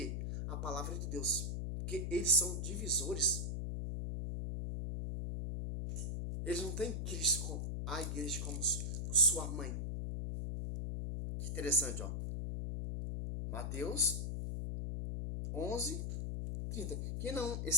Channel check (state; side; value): noise; left; hum, 2 dB below the sound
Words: A palavra de Deus. Porque eles são divisores. Eles não têm Cristo, a igreja, como sua mãe. Que interessante, ó. Mateus 11, 30. Quem não